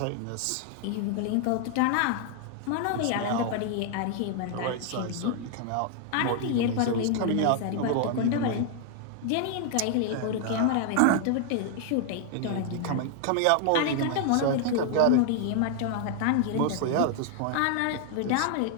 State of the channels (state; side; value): different; both; correlation 0.00